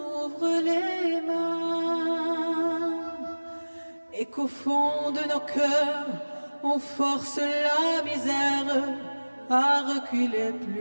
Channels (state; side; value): inverted; both; correlation -1.00